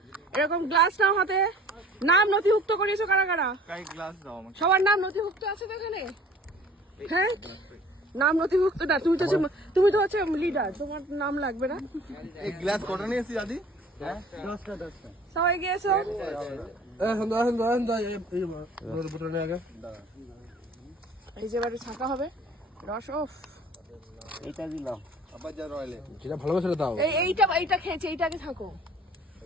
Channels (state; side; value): normal; both; correlation 0.50